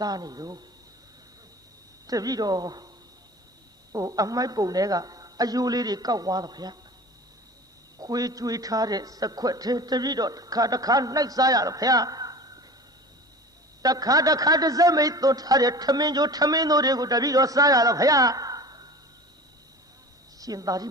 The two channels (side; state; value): both; normal; correlation 0.38